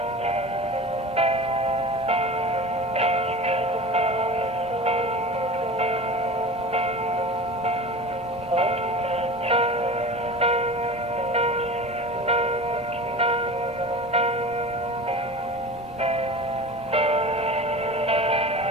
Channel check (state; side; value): normal; both; correlation 0.34